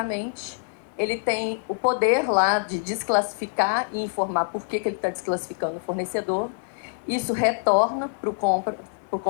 Ele tem o poder lá de desclassificar e informar por que ele está desclassificando o fornecedor. Isso retorna para o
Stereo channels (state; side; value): silent; right; 60 dB below the other